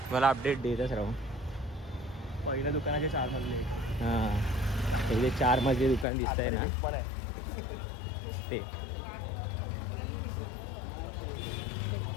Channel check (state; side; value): drops out; right; at 6.1 s